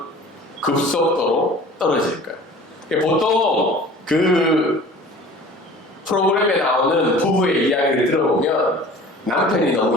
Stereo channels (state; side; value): normal; both; correlation 0.44